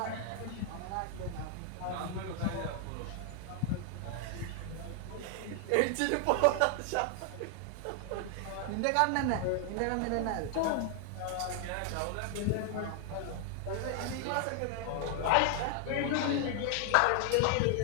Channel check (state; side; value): different; both; correlation 0.00